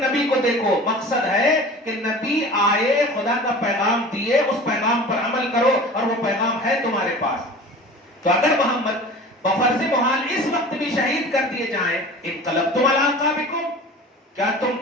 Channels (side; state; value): both; normal; correlation 0.39